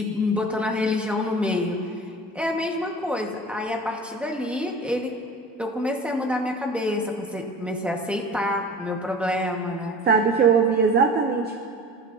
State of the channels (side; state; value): both; normal; correlation 0.39